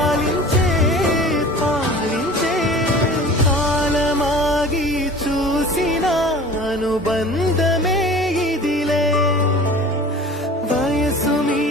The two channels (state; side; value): normal; both; correlation 0.41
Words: పాలించే. కాలమాగి చూసిన అనుబంధమే ఇదిలే, వయసు